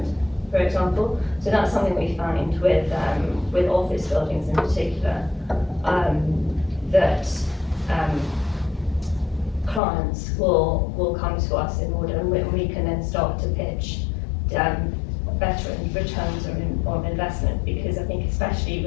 for example. So that's something we find with office buildings in particular, that clients will come to us in order, and we can then start to pitch better returns on investment, because I think especially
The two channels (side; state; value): right; drops out; at 9.8 s